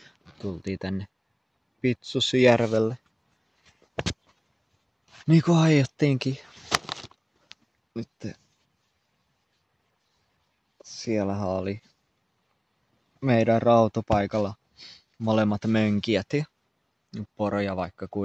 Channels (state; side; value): identical; both; correlation 1.00